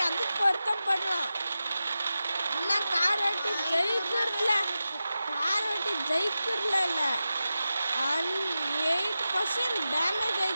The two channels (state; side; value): inverted; both; correlation -0.93